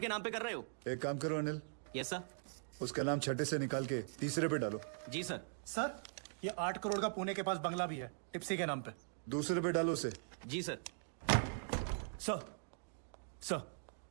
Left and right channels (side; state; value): left; silent; digital silence